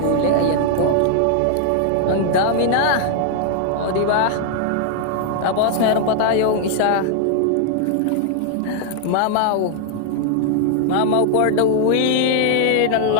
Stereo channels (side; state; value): both; different; correlation 0.00